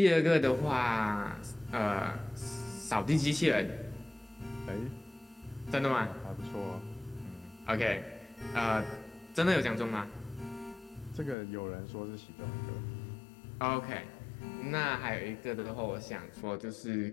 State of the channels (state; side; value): drops out; right; at 11.4 s